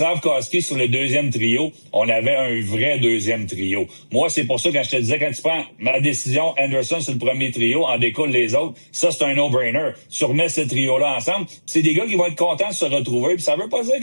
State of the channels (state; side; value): inverted; both; correlation -1.00